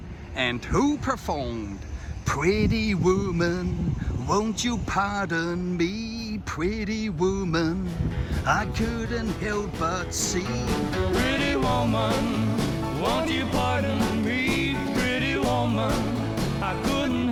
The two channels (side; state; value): both; identical; correlation 1.00